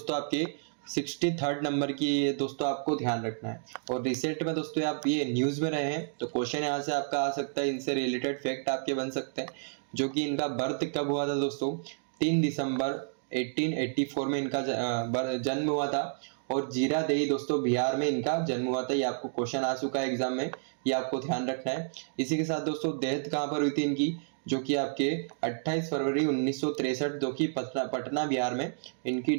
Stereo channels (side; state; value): left; silent; digital silence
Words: आपके 63rd नंबर की ये दोस्तों आपको ध्यान रखना है। और रिसेंट में दोस्तों आप ये न्यूज़ में रहे हैं तो क्वेश्चन यहाँ से आपका आ सकता है, इनसे रिलेटेड फैक्ट आपके बन सकते हैं। जो कि इनका बर्थ कब हुआ था दोस्तों, 3 दिसंबर 1884 में इनका जन्म हुआ था, और जीरादेई दोस्तों बिहार में इनका जन्म हुआ था। ये आपको क्वेश्चन आ चुका है एग्जाम में, ये आपको ध्यान रखना है। इसी के साथ दोस्तों डेथ कहाँ पर हुई थी इनकी, जो कि आपके 28 फरवरी 1963 जो कि पटना बिहार में इनकी